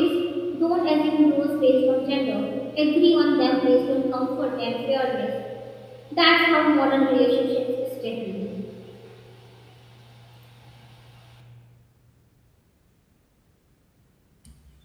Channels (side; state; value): both; identical; correlation 1.00